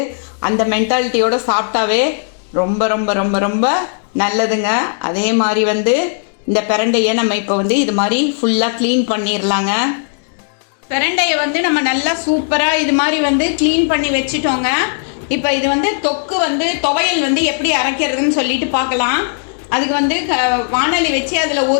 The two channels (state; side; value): silent; right; digital silence